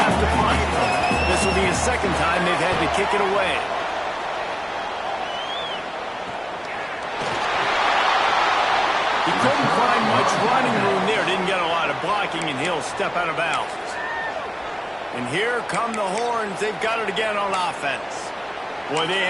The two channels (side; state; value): both; identical; correlation 1.00